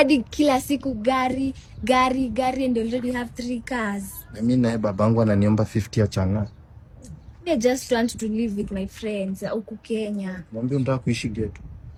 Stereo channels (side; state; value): both; identical; correlation 1.00